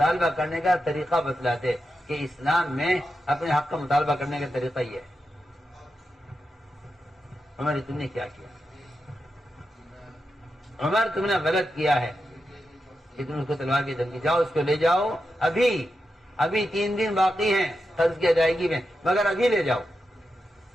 کرنے کا طریقہ بتلاتے کہ اسلام میں اپنے حق کا مطالبہ کرنے کا طریقہ یہ ہے۔ عمر تم نے کیا کیا؟ عمر تم نے غلط کیا ہے کہ تم اس کو تلوار کی دھمکی، جاؤ اس کو لے جاؤ، ابھی 3 دن باقی ہیں قرض کی ادائیگی میں، مگر ابھی لے جاؤ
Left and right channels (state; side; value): normal; both; correlation 0.88